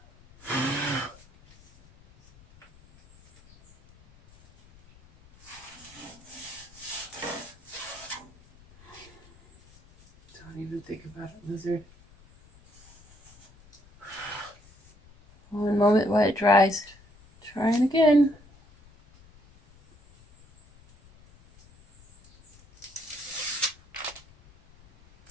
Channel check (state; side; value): noise; left; rumble, 26 dB below the sound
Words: Don't even think about it, lizard. One moment while it dries. Trying again.